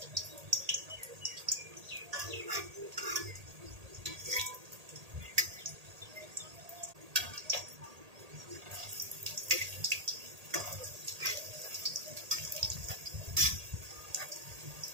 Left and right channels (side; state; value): left; late; 1.8 ms